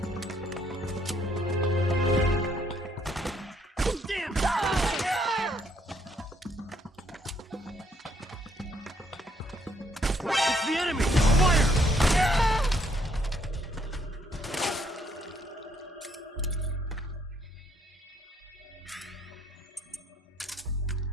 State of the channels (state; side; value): normal; both; correlation 0.68